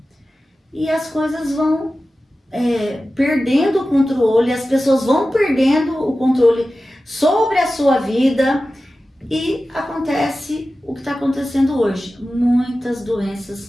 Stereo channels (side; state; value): both; normal; correlation 0.94